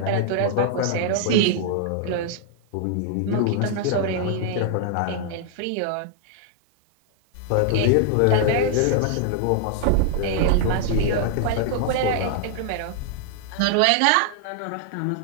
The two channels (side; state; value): both; different; correlation 0.00